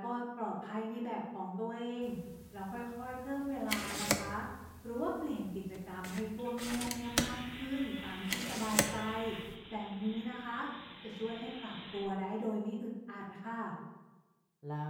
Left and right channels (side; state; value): both; identical; correlation 1.00